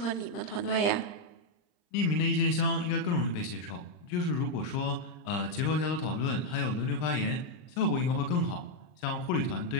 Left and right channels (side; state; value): right; late; 40 ms